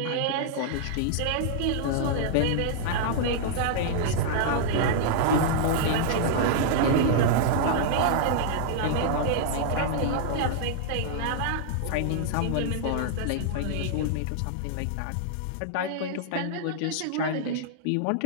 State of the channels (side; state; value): both; different; correlation -0.01